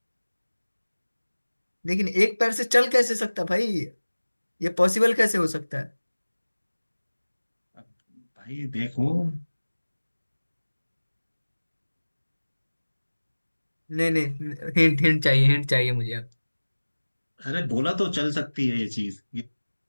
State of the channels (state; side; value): inverted; both; correlation -1.00